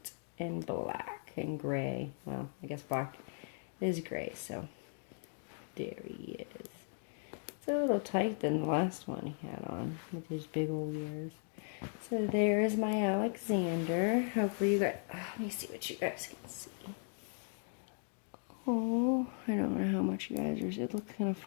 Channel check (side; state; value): right; silent; 53 dB below the other